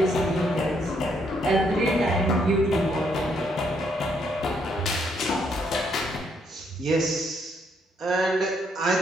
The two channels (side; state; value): both; normal; correlation 0.72